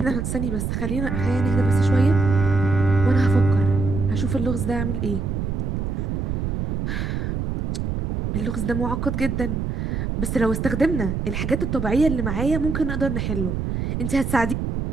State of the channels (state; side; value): noise; right; rumble, 2 dB below the sound